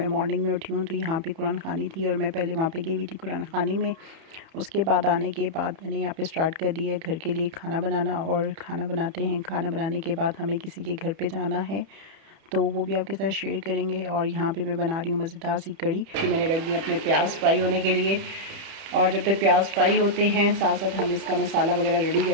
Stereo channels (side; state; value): left; late; 31 ms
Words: मॉर्निंग में उठी हूँ तो यहाँ पे कुरान ख़ानी थी और मैं पहले वहाँ पे गई हुई थी कुरान ख़ानी में। उसके बाद आने के बाद मैंने यहाँ पे स्टार्ट कर दिया है घर के लिए खाना बनाना, और खाना बनाते हैं। खाना बनाने के बाद हमें किसी के घर पर जाना है, तो वो भी आपके साथ शेयर करेंगे। और यहाँ पे मैं बना रही हूँ मज़ेदार सी कड़ी कि मैंने रख दी अपने प्याज फ्राई होने के लिए। और जब तक प्याज फ्राई होते हैं साथ साथ हम इसका मसाला वगैरह रेडी